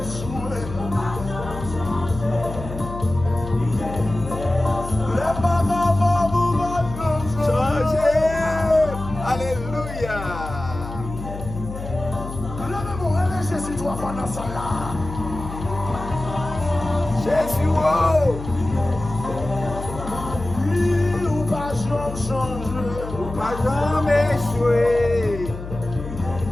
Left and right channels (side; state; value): left; noise; hum, 9 dB below the sound